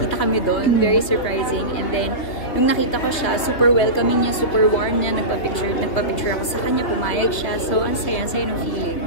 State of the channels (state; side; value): late; right; 3.4 ms